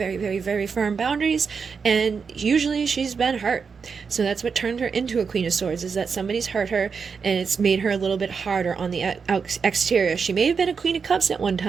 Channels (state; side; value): quieter; left; 5.7 dB